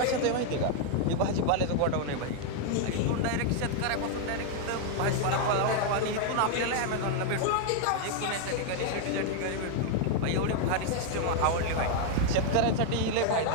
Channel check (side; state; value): both; different; correlation 0.00